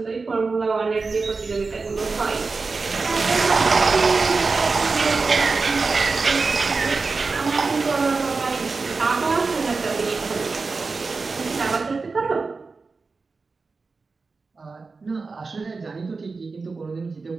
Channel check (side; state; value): left; quieter; 4.2 dB